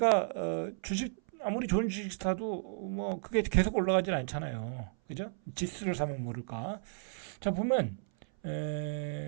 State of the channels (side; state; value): left; silent; 55 dB below the other